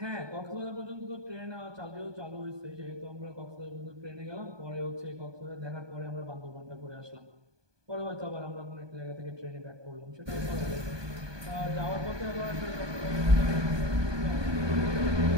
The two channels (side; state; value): left; late; 1.2 ms